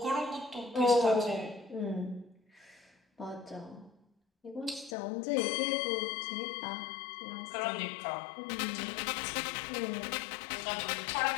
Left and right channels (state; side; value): drops out; right; at 5.0 s